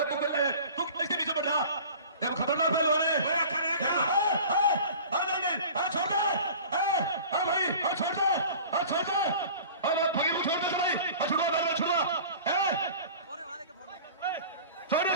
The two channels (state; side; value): inverted; both; correlation -0.41